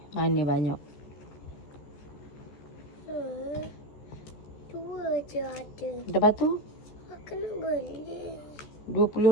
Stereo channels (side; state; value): right; late; 14 ms